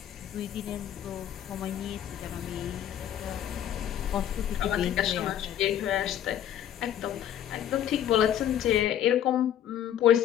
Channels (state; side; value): quieter; right; 10.6 dB